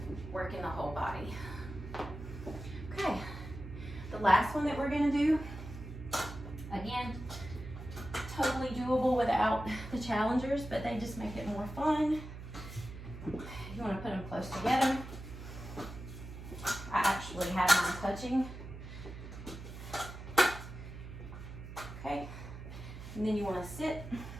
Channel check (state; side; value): noise; right; hum, 11 dB below the sound